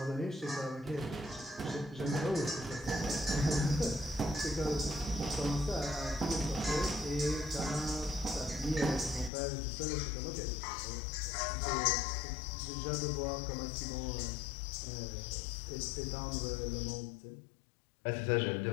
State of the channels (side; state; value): right; drops out; at 9.3 s